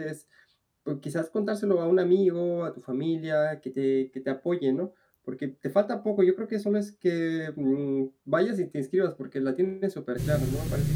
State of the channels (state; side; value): identical; both; correlation 1.00